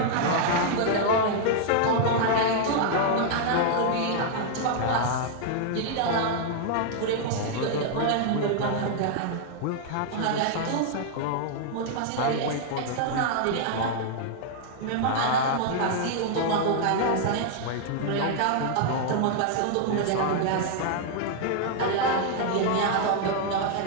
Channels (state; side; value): different; both; correlation -0.01